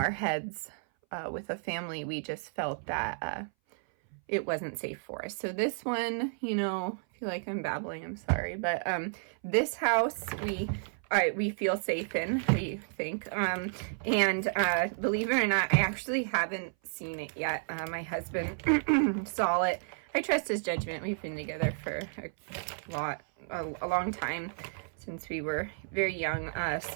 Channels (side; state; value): left; silent; 56 dB below the other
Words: heads with a family, we just felt that it wasn't safe for us. So this one, you know, I feel like I'm babbling, I'm sorry, but this house we feel safe in, we think. And believe it or not, I actually haven't seen it yet. My husband saw it. I trust his judgment. We've been together for a long time, since we were very young.